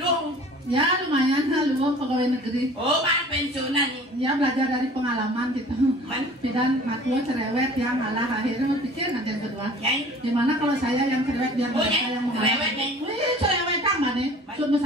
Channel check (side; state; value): both; normal; correlation 0.46